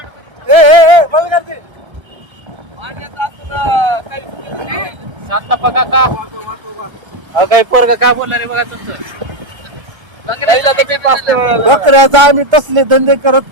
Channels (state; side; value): late; left; 1.3 ms